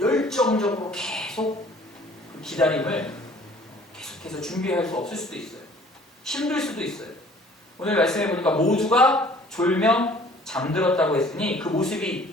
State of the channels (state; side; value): normal; both; correlation 0.53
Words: 계속 그 기다림을 계속해서 준비할 수 없을 수도 있어요. 힘들 수도 있어요. 오늘 말씀해 보니까 모두가 졸며 잠들었다고 했으니 그 모습이